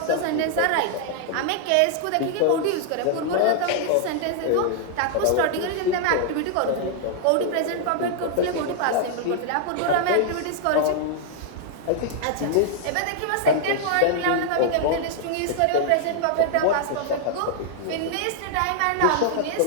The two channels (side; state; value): both; different; correlation 0.00